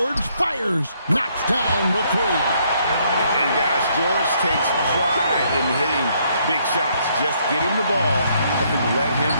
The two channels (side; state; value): both; inverted; correlation -0.70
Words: fires, knocks down the three. And guys, George takes pride in hitting big shots. Just get him the ball and let him